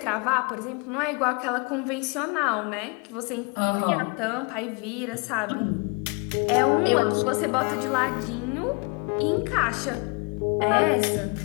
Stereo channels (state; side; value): quieter; right; 32.6 dB